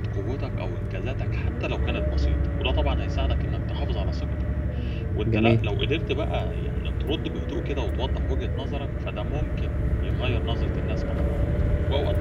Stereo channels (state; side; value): identical; both; correlation 1.00